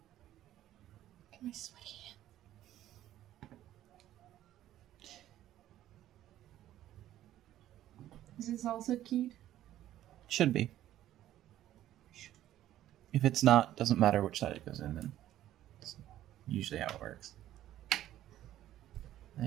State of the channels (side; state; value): left; quieter; 13.0 dB